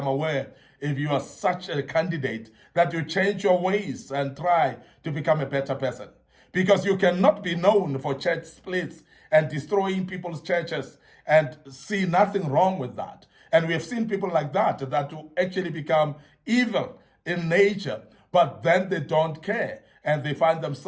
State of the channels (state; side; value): identical; both; correlation 1.00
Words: aware if you are such a candidate that you change your ways and try to become a better person. Because you cannot be known for church splits and destroying people's churches and see nothing wrong with that. And we have seen people like that will actually become evil in nature, but then they don't care and they find